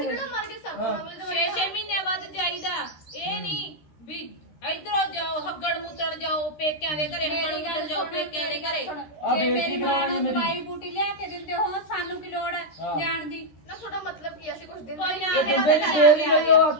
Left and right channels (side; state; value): right; late; 13 ms